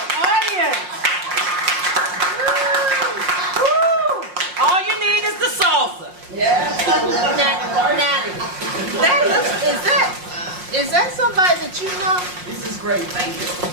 audience. Woo. All you need is the salsa. Is that somebody that you know? This is great. Thank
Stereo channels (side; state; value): left; late; 5.6 ms